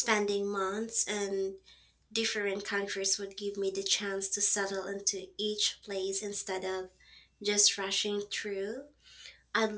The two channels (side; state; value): both; identical; correlation 1.00